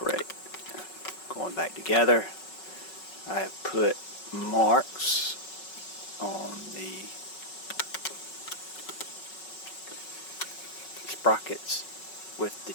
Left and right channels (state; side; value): late; right; 5.4 ms